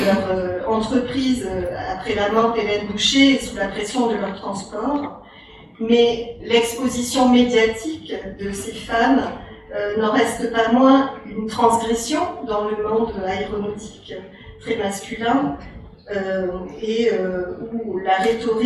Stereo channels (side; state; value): both; identical; correlation 1.00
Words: entreprise après la mort d'Hélène Boucher et sous la pression de leur transport. Mais l'exposition médiatique de ces femmes n'en reste pas moins une transgression dans le monde aéronautique très masculin où la